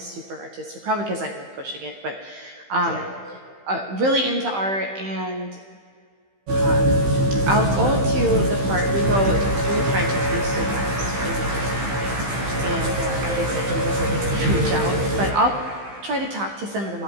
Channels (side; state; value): left; late; 15 ms